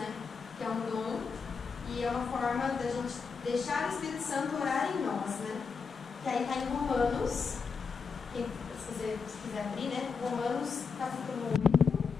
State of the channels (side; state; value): right; quieter; 5.4 dB